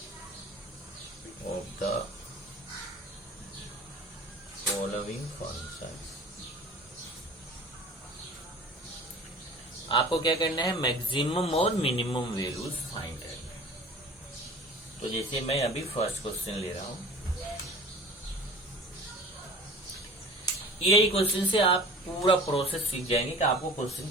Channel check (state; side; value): normal; both; correlation 0.42